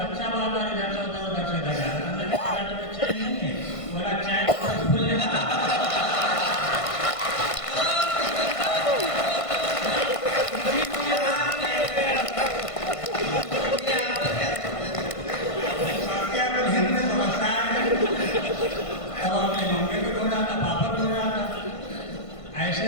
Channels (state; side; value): late; right; 1.5 ms